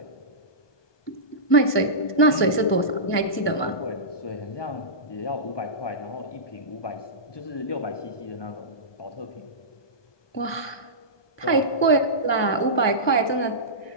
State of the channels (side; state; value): right; late; 1.2 ms